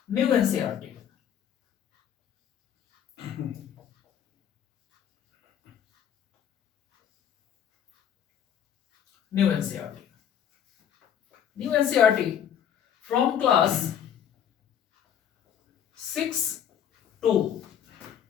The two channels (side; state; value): right; quieter; 9.1 dB